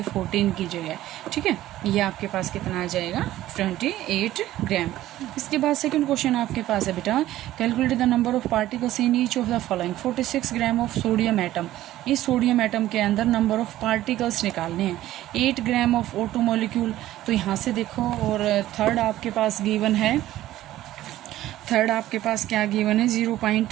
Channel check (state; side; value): quieter; left; 14.5 dB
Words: 14 की जगह, ठीक है। ये आपके पास कितना आ जाएगा, 28 ग्राम। इसके बाद सेकंड क्वेश्चन आपके पास है बेटा, calculate the number of particles in each of the following. 46 gram of sodium atom. इस सोडियम एटम के अंदर नंबर ऑफ पार्टिकल्स निकालने हैं। 8 ग्राम ऑफ O2 मॉलिक्यूल। तो यहाँ से देखो, और थर्ड आपके पास गिवन है, थर्ड आपके पास क्या गिवन है,